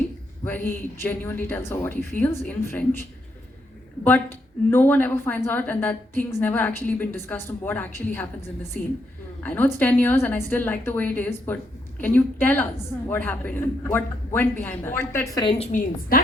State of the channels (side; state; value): both; normal; correlation 0.77